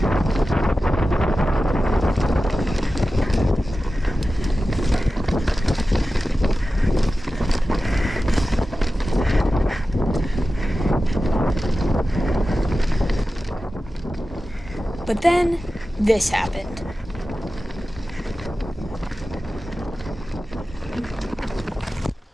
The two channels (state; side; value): normal; both; correlation 0.94